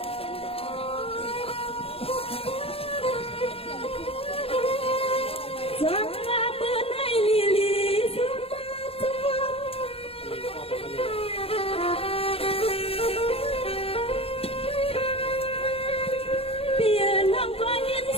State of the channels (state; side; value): late; right; 0.28 ms